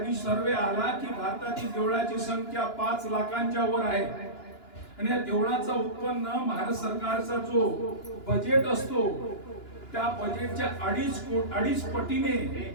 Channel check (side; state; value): right; late; 2.9 ms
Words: सर्वे आला की भारतातील देवळाची संख्या 5 लाखांच्या वर आहे आणि या देवळाचं उत्पन्न भारत सरकारचा जो बजेट असतो त्या बजेटच्या 2.5 पटीने